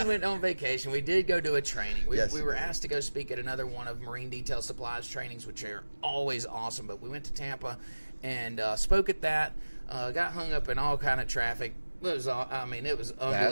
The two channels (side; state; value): both; inverted; correlation -1.00